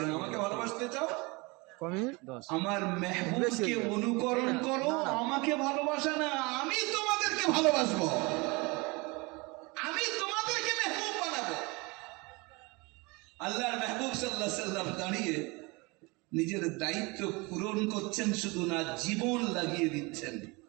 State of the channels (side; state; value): left; quieter; 26.3 dB